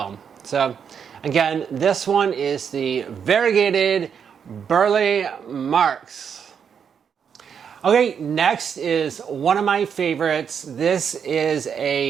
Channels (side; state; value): left; quieter; 7.3 dB